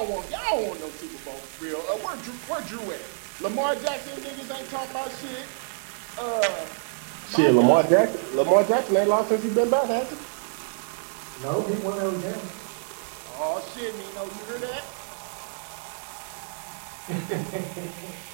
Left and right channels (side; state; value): left; silent; digital silence